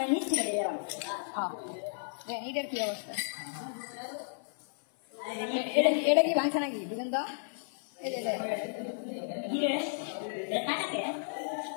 এটার কি অবস্থা এটা কি ভাঙছে নাকি বুঝলেন তো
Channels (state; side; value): silent; right; 56 dB below the other